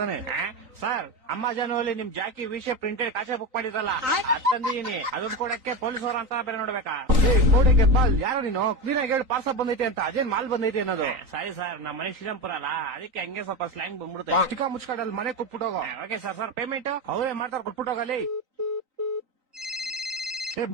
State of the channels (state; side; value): late; left; 3.9 ms